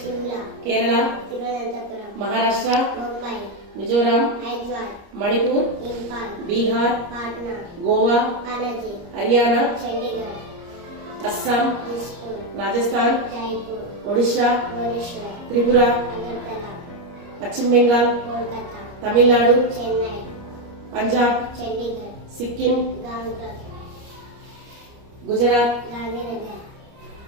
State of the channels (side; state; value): left; late; 30 ms